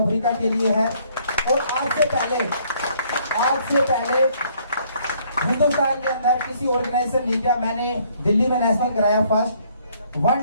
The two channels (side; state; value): both; inverted; correlation -0.64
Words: अफ्रीका के लिए है। और आज से पहले हिंदुस्तान के अंदर किसी ऑर्गेनाइजेशन नहीं किया। मैंने दिल्ली में नेशनल कराया first.